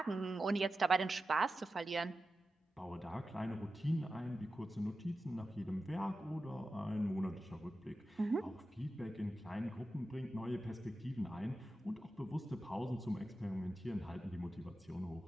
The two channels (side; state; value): both; normal; correlation 0.92